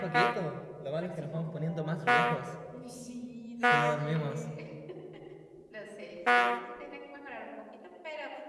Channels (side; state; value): both; identical; correlation 1.00